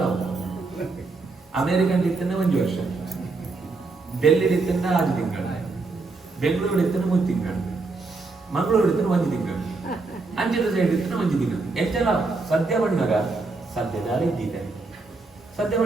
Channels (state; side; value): quieter; left; 3.7 dB